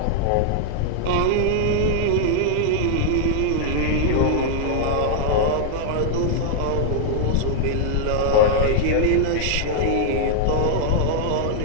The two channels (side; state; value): both; different; correlation -0.01